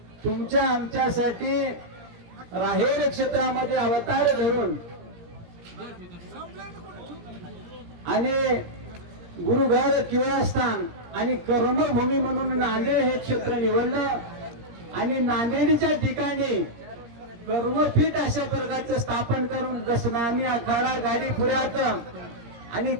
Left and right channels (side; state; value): left; late; 17 ms